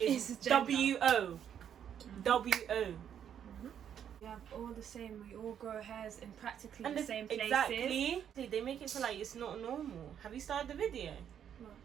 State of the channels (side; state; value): left; quieter; 9.0 dB